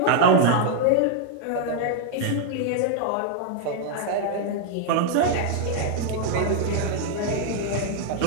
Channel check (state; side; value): different; both; correlation 0.00